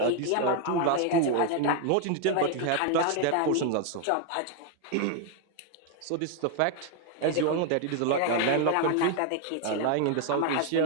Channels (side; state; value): both; different; correlation 0.01